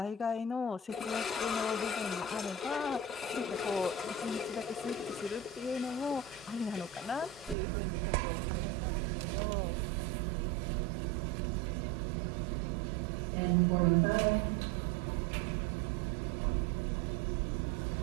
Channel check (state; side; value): drops out; left; at 7.6 s